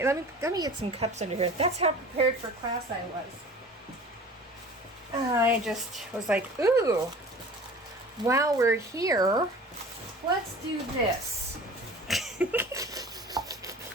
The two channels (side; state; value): both; normal; correlation 0.42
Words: Let me get some cups under here. That's how prepared for class I was. I just was like, ooh, while we're here, let's do this.